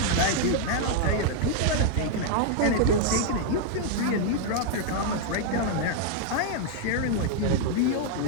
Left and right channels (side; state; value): both; different; correlation 0.00